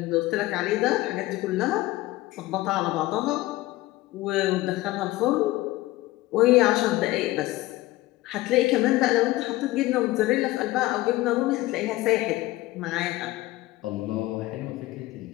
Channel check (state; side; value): quieter; right; 18.1 dB